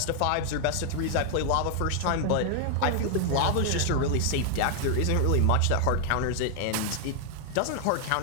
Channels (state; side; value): different; both; correlation 0.00